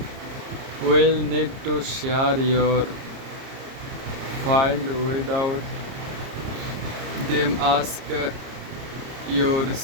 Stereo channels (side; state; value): left; late; 30 ms